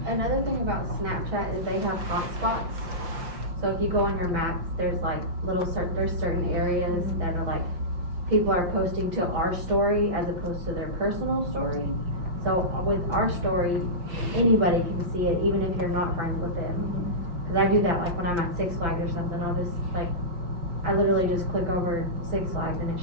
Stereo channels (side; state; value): left; late; 5.6 ms